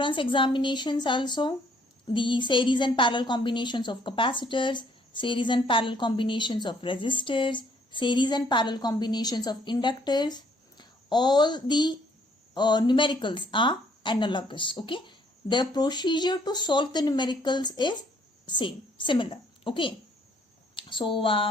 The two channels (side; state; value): both; normal; correlation 0.64